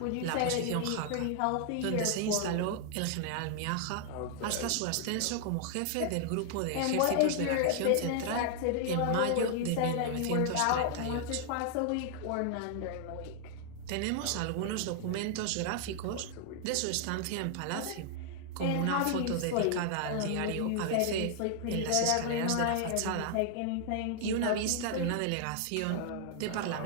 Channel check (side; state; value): both; different; correlation 0.00